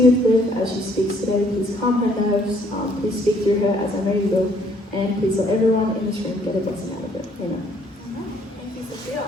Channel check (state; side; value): normal; both; correlation 0.64